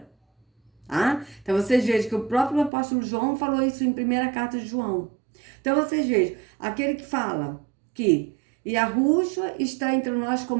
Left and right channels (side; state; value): left; drops out; at 2.7 s